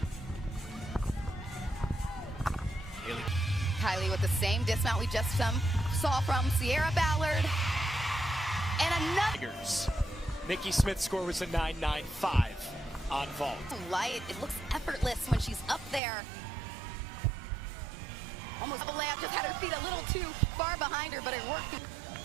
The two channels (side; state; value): left; drops out; at 16.0 s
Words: Kylie with the same dismount we just saw from Sierra Ballard. And another. Nikki Smith's score was a 9.95 on vault. Light. It looks effortless when she's up there. Almost double layup. Just had her feet a little too far behind her, but it worked.